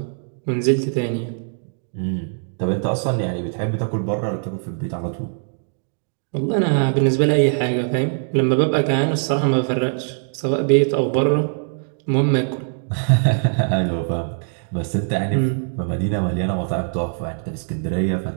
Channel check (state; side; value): silent; left; digital silence